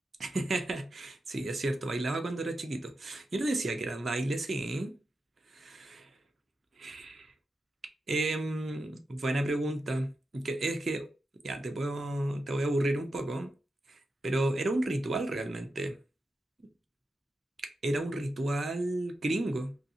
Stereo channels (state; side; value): normal; both; correlation 0.89